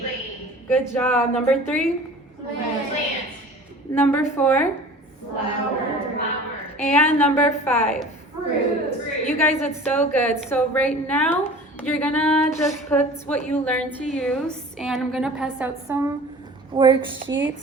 good job. Number three, Plant. Plant. number four, Flower. Flower. and number five. Fruit. Fruit. You guys did so good. So right now, you're gonna just put what you learned to use, and I'm gonna pass out some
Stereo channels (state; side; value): normal; both; correlation 0.42